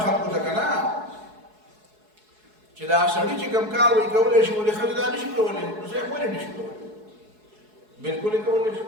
خلکو ته که نه چې دا سړي چې کوم کار وایي کولی شي ولې ښځې دا نه شي کولی نو زه یې ولې نه شي کولی بلکل یې کولی شي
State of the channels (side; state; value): left; late; 4.7 ms